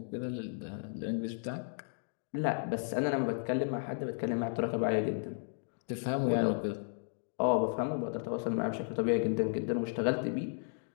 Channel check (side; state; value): right; silent; digital silence